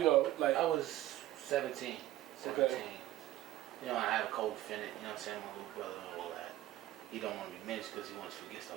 like I was 17. Okay. You know, I have a co-defendant, you know what I'm saying, my little brother and all that. He don't want to be mentioned because he wants to forget the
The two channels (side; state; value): left; quieter; 14.5 dB